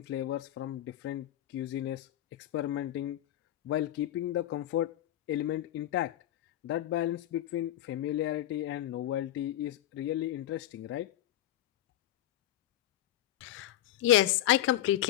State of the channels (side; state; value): right; quieter; 13.1 dB